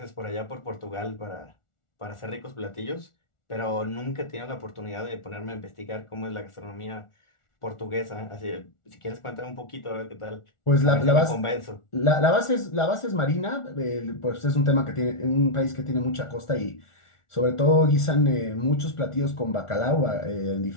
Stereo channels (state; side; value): late; right; 1.4 ms